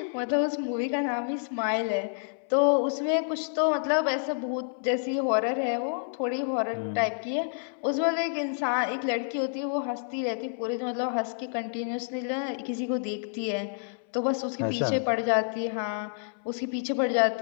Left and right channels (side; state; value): right; silent; 59 dB below the other